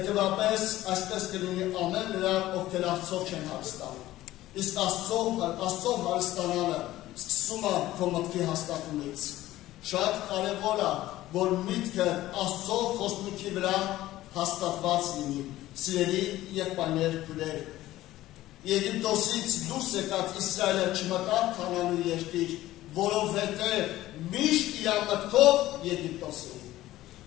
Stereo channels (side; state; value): right; quieter; 15.6 dB